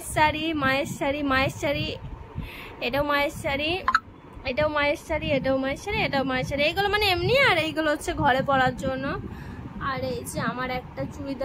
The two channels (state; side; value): identical; both; correlation 1.00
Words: শাড়ি, মায়ের শাড়ি, এটাও মায়ের শাড়ি, এটাও মায়ের শাড়ি, এটাও মায়ের শাড়ি, এটাও মায়ের শাড়ি। এইগুলো মানে এমনি, আর এইগুলো হচ্ছে ঘরে পরার জন্য। আর এই যে আমার একটা